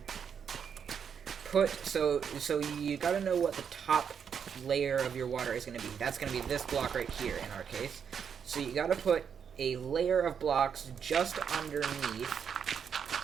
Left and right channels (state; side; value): quieter; left; 7.3 dB